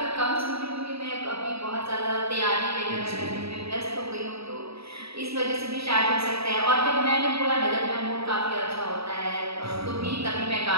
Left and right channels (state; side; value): late; left; 0.77 ms